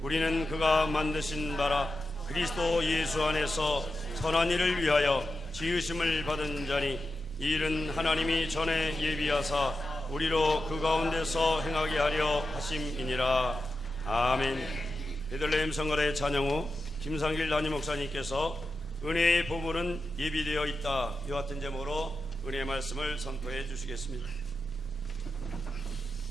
우리는 그가 만드신 바라 그리스도 예수 안에서 선한 일을 위하여 지으심을 받은 자니 이 일은 하나님이 전에 예비하사 우리로 그 가운데서 행하게 하려 하심이니라. 아멘. 베들레헴 성가대 찬양 후 김상길 담임 목사님께서 은혜의 보물은 예비되어 있다, 이와 같은 제목으로 은혜의 말씀을 선포해 주시겠습니다.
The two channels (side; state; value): both; normal; correlation 0.90